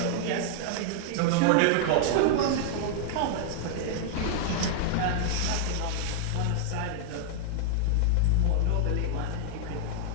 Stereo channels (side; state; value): both; different; correlation -0.01